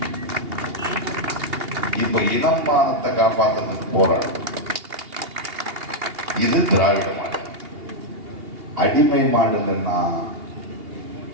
இப்ப இனம் மானத்தை காப்பாத்துறதுக்கு போராடும். இது திராவிட மாடல். அடிமை மாடல்னா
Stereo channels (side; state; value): left; late; 2.8 ms